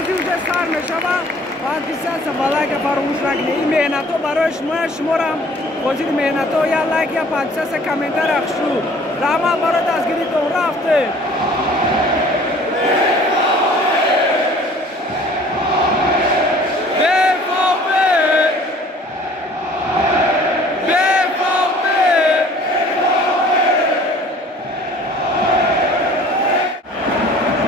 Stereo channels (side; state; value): both; normal; correlation 0.51